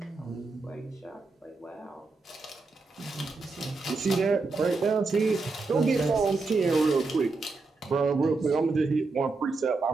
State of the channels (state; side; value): quieter; left; 3.8 dB